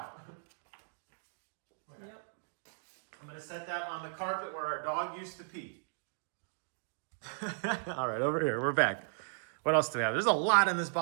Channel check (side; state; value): left; silent; digital silence